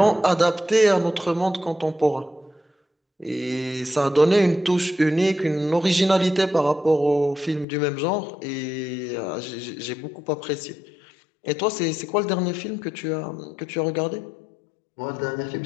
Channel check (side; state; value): right; drops out; at 7.7 s